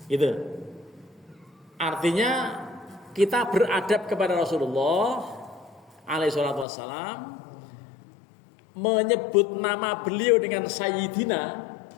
Gitu. Artinya kita beradab kepada Rasulullah alaihissalatu wassalam, menyebut nama beliau dengan Sayyidina,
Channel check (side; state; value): right; drops out; at 6.7 s